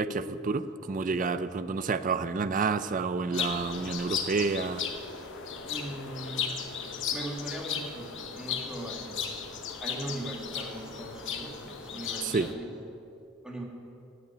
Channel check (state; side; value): normal; both; correlation 0.34